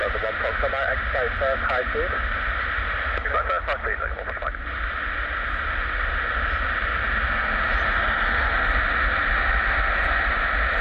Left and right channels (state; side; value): identical; both; correlation 1.00